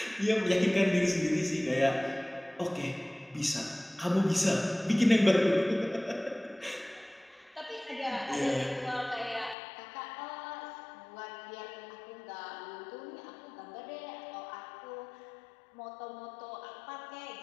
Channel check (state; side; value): drops out; right; at 9.6 s